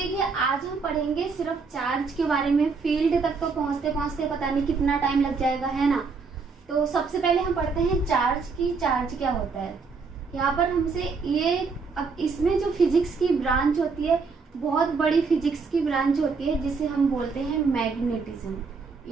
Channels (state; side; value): quieter; left; 4.8 dB